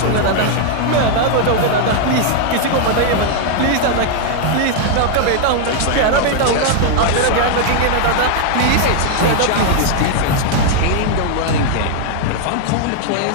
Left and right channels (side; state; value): both; different; correlation 0.00